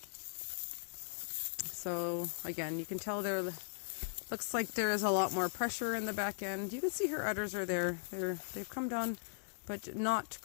So again, you can tell looks like there is a lot more pressure in the back end. You can see her udders are there. They've come down, but not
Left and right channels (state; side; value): silent; right; digital silence